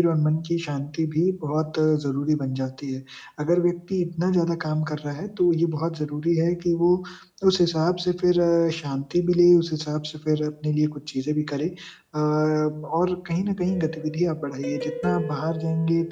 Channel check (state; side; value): identical; both; correlation 1.00